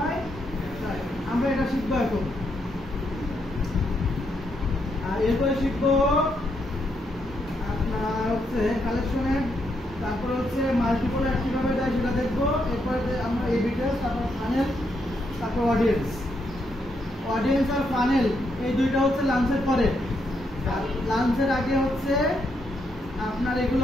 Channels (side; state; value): both; normal; correlation 0.78